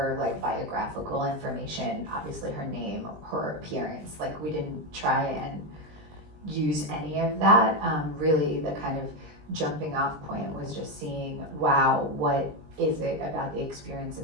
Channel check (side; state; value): left; late; 20 ms